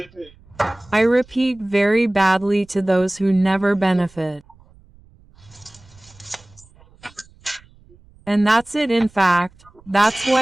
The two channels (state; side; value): noise; right; rumble, 28 dB below the sound